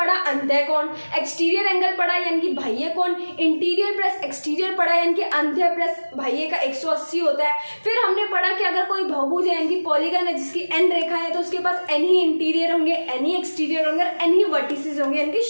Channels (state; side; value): inverted; both; correlation -1.00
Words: अंत्यकोण, एक्सटीरियर एंगल पढ़ा यानी कि बाह्य कोण, इंटीरियर प्लस एक्सटीरियर पढ़ा यानी कि अंत्य प्लस बाह्य का 180 होता है। फिर हमने पढ़ा कि अगर कोई बहुभुज है यानी कि पॉलीगन है जिसकी n रेखा है, तो उसके पास n ही इंटीरियर होंगे, n ही एक्सटीरियर होंगे और n ही वर्टिसेस होंगे यानी कि